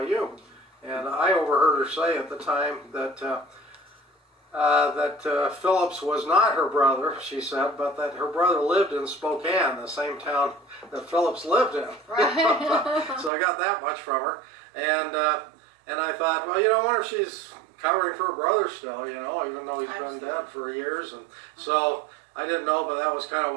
And I overheard her say at the time that Phillips was not her brother, she said, but that her brother lived in Spokane, the same town that Phillips lived in. Right. So I got that much from her. And I thought, well, I wonder if she's covering for her brother still, even though he's been dead for years. And so I didn't know, but that was kind of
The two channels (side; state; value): left; drops out; at 13.3 s